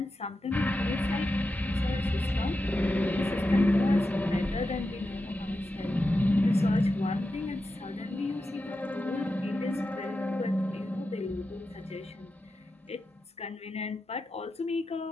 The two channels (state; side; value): normal; both; correlation 0.90